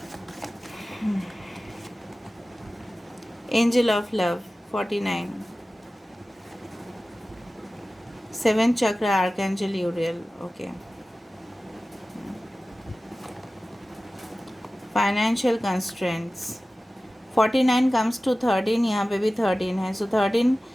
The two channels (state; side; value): normal; both; correlation 0.96